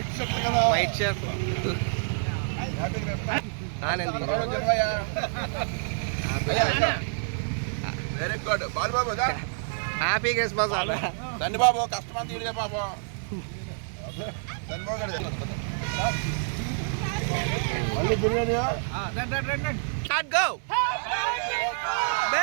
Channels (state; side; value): silent; left; digital silence